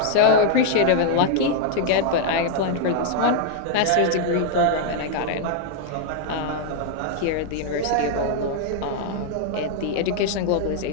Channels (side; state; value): both; different; correlation -0.01